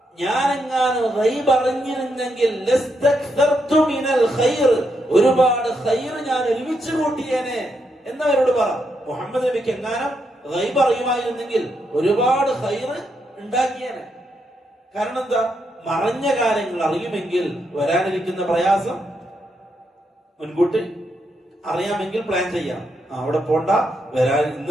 ഞാനെങ്ങാനും ഗൈബ് അറിഞ്ഞിരുന്നെങ്കിൽ ലസ്തക്തർതു മിനൽ ഖൈർ, ഒരുപാട് ഖൈർ ഞാൻ ഒരുമിച്ച് കൂട്ടിയേനെ എന്നവരോട് പറ. മുഹമ്മദ് നബിക്ക് എങ്ങാനും ഗൈബ് അറിയുമായിരുന്നെങ്കിൽ ഒരുപാട് ഖൈർ ഉണ്ടാക്കിയേനെ. കാരണം എന്താ? മറഞ്ഞ കാര്യങ്ങൾ അറിയുമെങ്കിൽ വരാനിരിക്കുന്ന പ്രയാസം മുൻകൂട്ടി അറിയാമെങ്കിൽ പ്ലാൻ ചെയ്യാം. അവിടെ പോണ്ട,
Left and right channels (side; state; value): both; normal; correlation 0.80